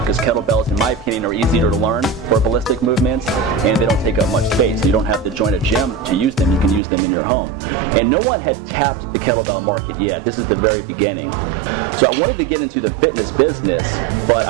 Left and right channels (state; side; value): drops out; left; at 6.8 s